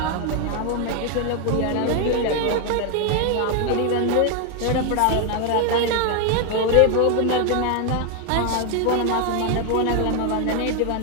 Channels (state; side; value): different; both; correlation 0.01